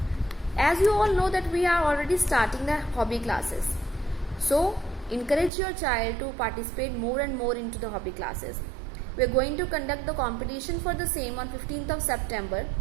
As you all know that we are already starting the hobby classes. So, encourage your child to participate more and more into the hobby classes. We are going to conduct the competition for the same on 15th of September.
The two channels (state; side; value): drops out; left; at 5.5 s